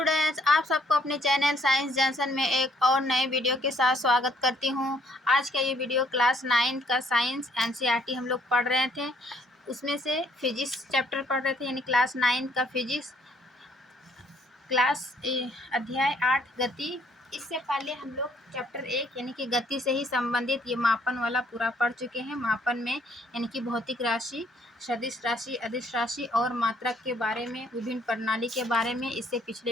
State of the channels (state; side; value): normal; both; correlation 0.65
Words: आप सबको अपने चैनल साइंस जंक्शन में एक और नए वीडियो के साथ स्वागत करती हूँ। आज का ये वीडियो क्लास 9 का साइंस एनसीईआरटी हम लोग पढ़ रहे थे, उसमें से फिजिक्स चैप्टर पढ़ रहे थे, यानी क्लास 9 का फिजिक्स अध्याय 8 गति। इससे पहले हम लोग चैप्टर 1 यानी कि गति से ही संबंधित ये मापन वाला पूरा पढ़ चुके हैं। मापन में यानी कि भौतिक राशि, सदिश राशि, अदिश राशि और मात्रक के बारे में, विभिन्न प्रणाली के बारे में इससे